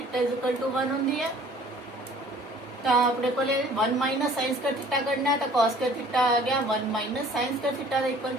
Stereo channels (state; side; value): normal; both; correlation 0.52